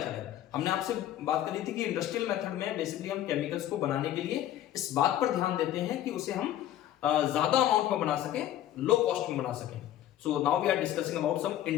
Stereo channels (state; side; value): quieter; right; 12.4 dB